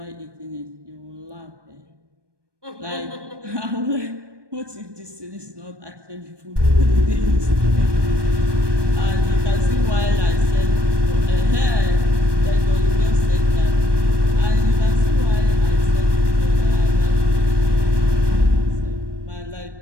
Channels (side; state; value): left; late; 1.2 ms